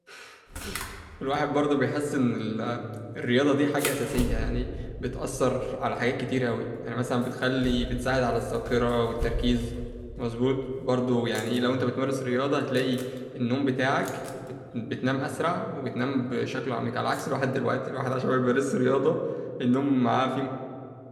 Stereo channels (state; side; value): identical; both; correlation 1.00